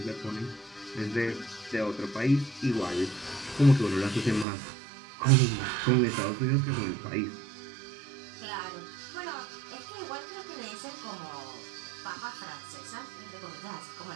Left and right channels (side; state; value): left; drops out; at 4.5 s